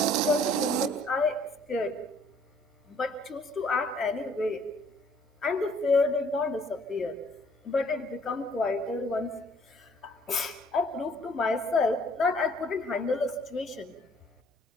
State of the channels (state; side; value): normal; both; correlation 0.60